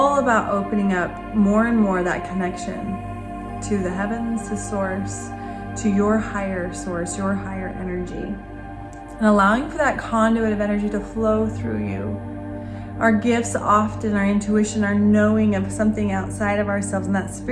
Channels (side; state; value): both; identical; correlation 1.00